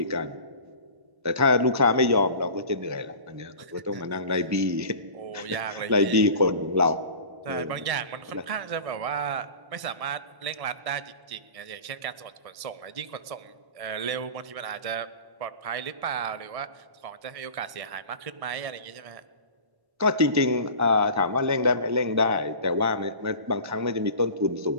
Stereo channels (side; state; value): left; late; 1.1 ms